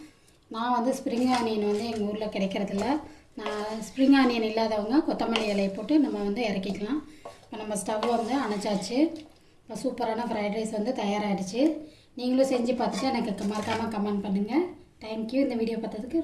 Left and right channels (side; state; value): both; identical; correlation 1.00